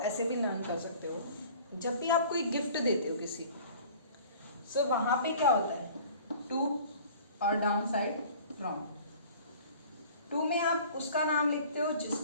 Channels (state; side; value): inverted; both; correlation -0.47